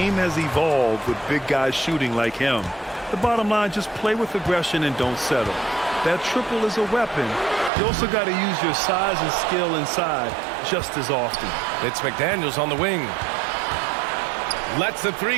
has evolved with big guys shooting like him. The bottom line, just play with aggression and don't settle. That triple is a weapon. You also got to use your size and skill inside just as often. It's McDaniels on the wing. Lets the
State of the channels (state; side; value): drops out; left; at 7.7 s